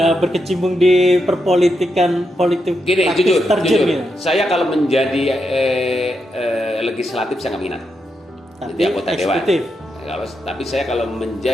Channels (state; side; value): normal; both; correlation 0.84